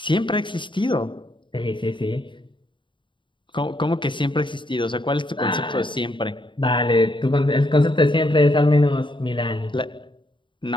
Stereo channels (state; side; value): late; right; 0.23 ms